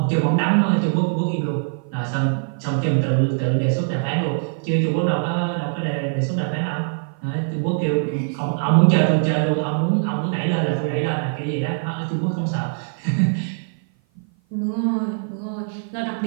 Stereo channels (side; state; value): left; silent; 55 dB below the other